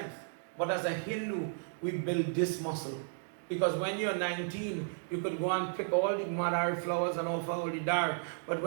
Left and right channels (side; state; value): left; silent; digital silence